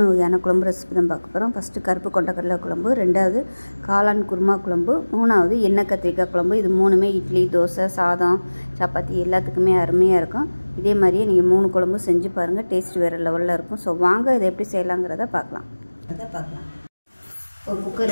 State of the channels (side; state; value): both; inverted; correlation -1.00